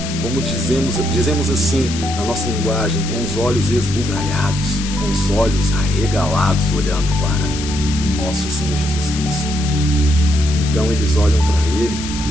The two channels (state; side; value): noise; left; hiss, 9 dB below the sound